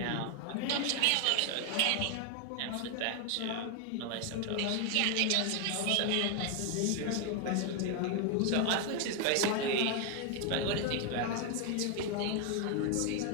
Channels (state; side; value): different; both; correlation 0.01